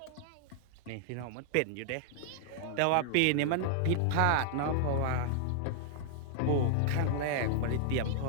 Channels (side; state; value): both; different; correlation 0.00